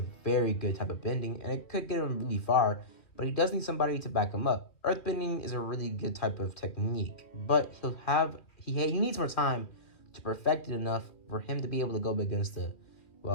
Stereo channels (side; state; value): right; late; 2.8 ms